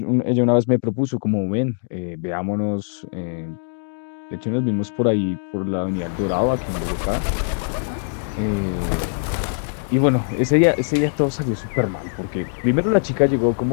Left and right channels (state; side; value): silent; right; digital silence